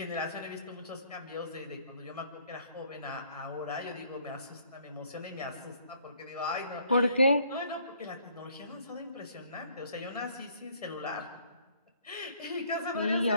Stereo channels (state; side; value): inverted; both; correlation -0.62